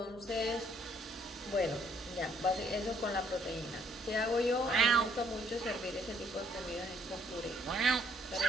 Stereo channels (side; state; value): both; normal; correlation 0.66